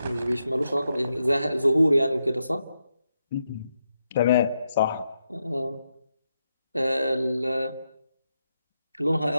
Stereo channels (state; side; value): inverted; both; correlation -0.84